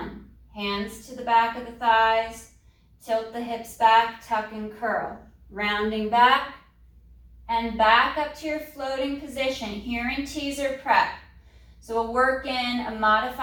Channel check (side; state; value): both; identical; correlation 1.00